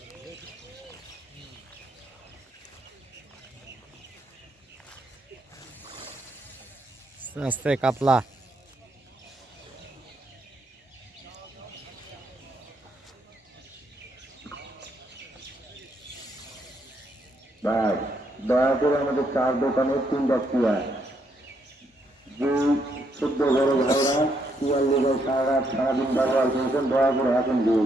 আস্তে কাতলা। ভাই দয়া করে আমাদের চার দোকানের 3টা চেয়ার, যে 14 বড় ভাইরা চেয়ার লেগে সারাদিন ব্যবহার করেছেন, দয়া করে এখন দিয়ে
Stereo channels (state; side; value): normal; both; correlation 0.75